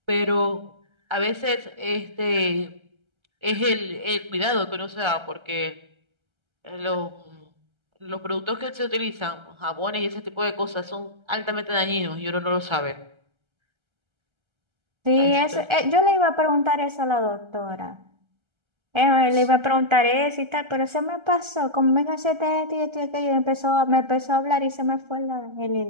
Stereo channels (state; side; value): late; left; 1.3 ms